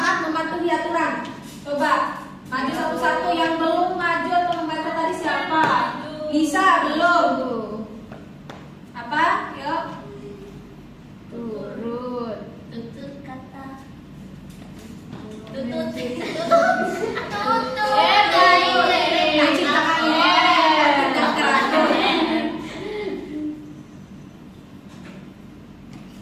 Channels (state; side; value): identical; both; correlation 1.00